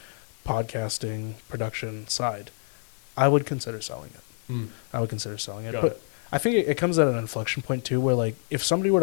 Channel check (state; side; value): silent; right; digital silence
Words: podcasting production side, I would consider selling it. I would consider selling it. Got but it. I think it comes at an inflection point too, where like if somebody were